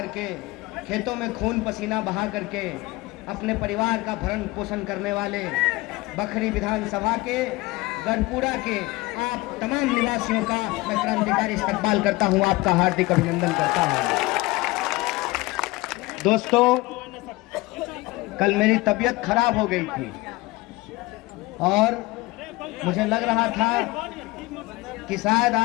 खेतों में खून पसीना बहा करके अपने परिवार का भरण पोषण करने वाले बखरी विधानसभा के, गढ़पुरा के आप तमाम निवासियों का मैं क्रांतिकारी इस्तकबाल करता हूं, आपका हार्दिक अभिनंदन करता हूं। दोस्तों, कल मेरी तबीयत खराब हो गई थी और मुझे लग रहा था कि शायद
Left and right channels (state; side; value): quieter; right; 21.4 dB